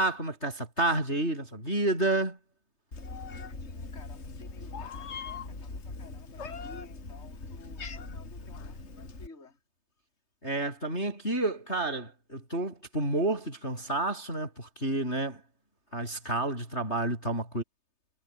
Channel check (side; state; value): right; late; 3.3 ms